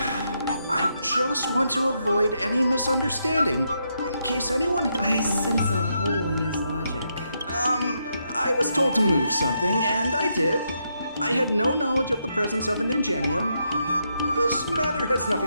I just want to avoid any misunderstanding, in case anyone had... I sense a hole in his logic. I was told to move something, and I did. I had no knowledge of the presence of an ingenium. This matter has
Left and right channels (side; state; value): both; inverted; correlation -0.80